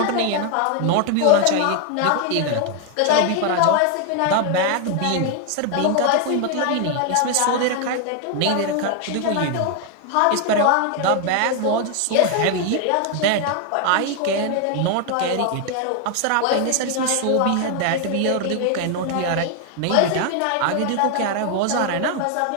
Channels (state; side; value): different; both; correlation 0.00